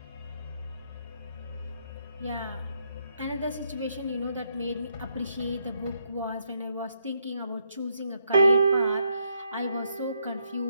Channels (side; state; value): both; inverted; correlation -0.76